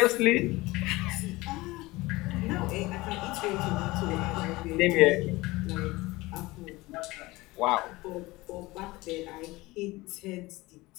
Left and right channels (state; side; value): quieter; right; 20.8 dB